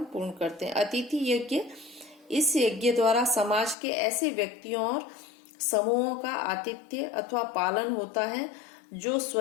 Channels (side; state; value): right; drops out; at 3.8 s